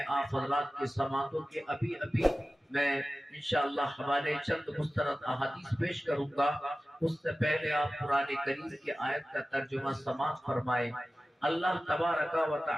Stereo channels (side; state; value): both; normal; correlation 0.96